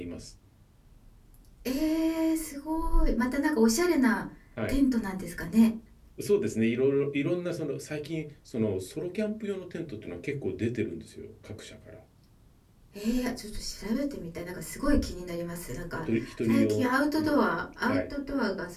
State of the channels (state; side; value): identical; both; correlation 1.00